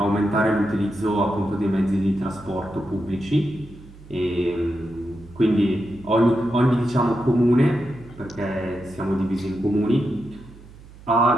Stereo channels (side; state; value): right; noise; hum, 20 dB below the sound